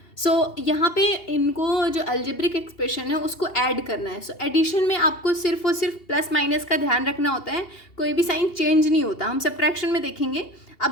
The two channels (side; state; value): right; late; 2.7 ms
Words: So यहाँ पे इनको जो अलजेब्रिक एक्सप्रेशन है उसको ऐड करना है। सो एडिशन में आपको सिर्फ और सिर्फ प्लस माइनस का ध्यान रखना होता है, कोई भी साइन चेंज नहीं होता। हम सब्ट्रैक्शन में देखेंगे।